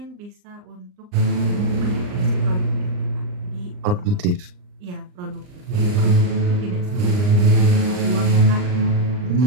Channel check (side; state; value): left; late; 39 ms